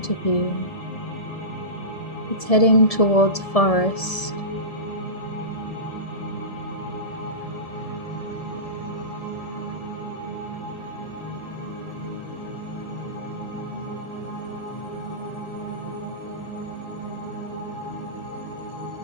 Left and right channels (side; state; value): right; late; 1.7 ms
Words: of you, it's heading towards a forest.